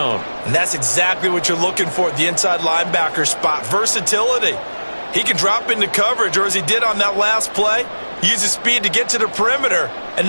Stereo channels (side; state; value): both; inverted; correlation -1.00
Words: And that's exactly what you're looking for at the inside linebacker spot. Versatility. He can drop into coverage, or as he did on that last play, Use his speed to get to the perimeter and